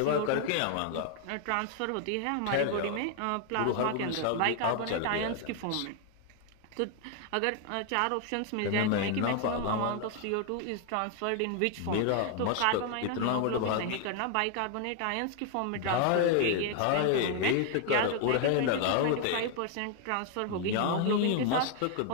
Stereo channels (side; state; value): both; different; correlation 0.00